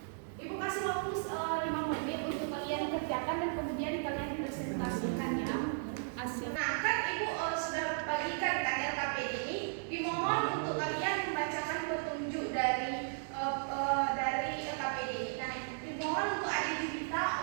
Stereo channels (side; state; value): left; silent; digital silence